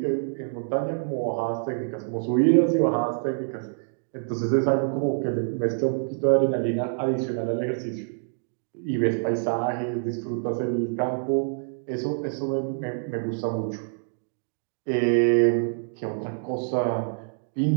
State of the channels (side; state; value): left; silent; digital silence